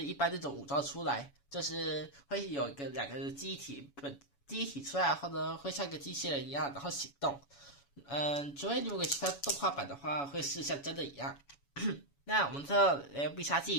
一般这种武装出来，就是会有两个记忆体出来后呢，会像一个机器人一样，然后行动。除非如果其他动画版的话，会是像真的一样。那我们这必杀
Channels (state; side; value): late; right; 7.1 ms